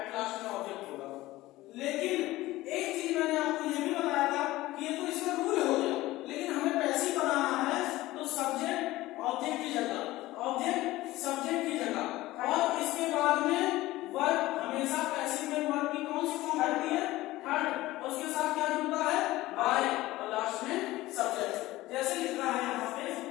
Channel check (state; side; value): quieter; right; 17.6 dB